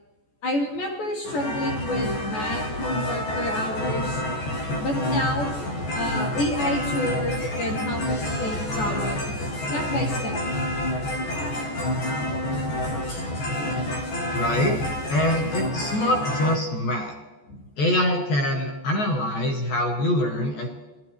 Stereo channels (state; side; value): late; right; 14 ms